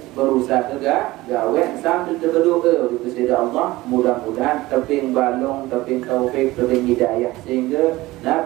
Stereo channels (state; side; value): quieter; left; 18.8 dB